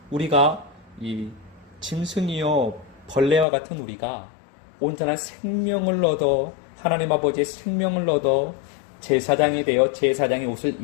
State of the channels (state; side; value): drops out; right; at 3.5 s